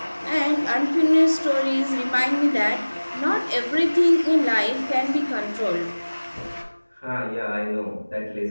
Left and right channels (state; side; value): inverted; both; correlation -1.00